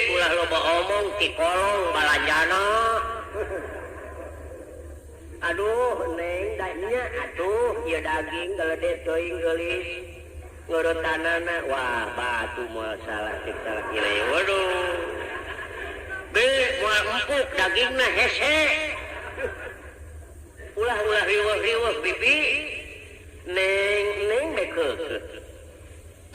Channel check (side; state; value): both; identical; correlation 1.00